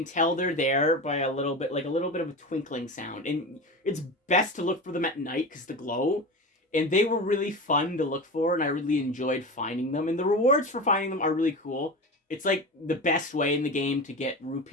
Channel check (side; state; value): both; normal; correlation 0.27